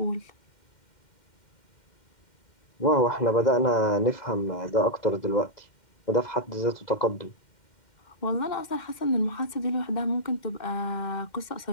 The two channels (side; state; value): right; late; 2.1 ms